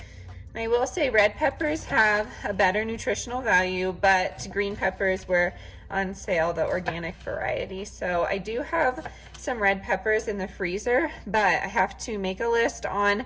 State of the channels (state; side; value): identical; both; correlation 1.00